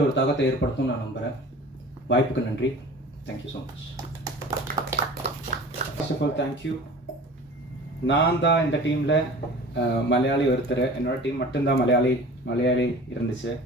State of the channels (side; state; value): both; normal; correlation 0.41